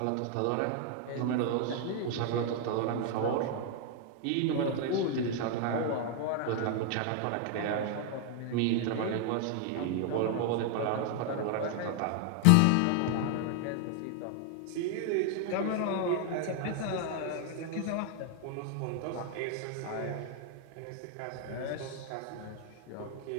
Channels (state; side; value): different; both; correlation 0.00